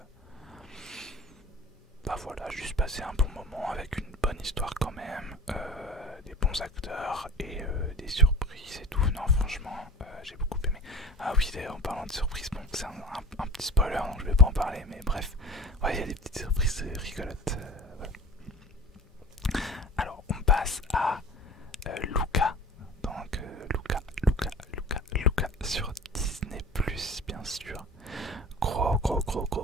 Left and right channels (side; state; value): both; normal; correlation 0.38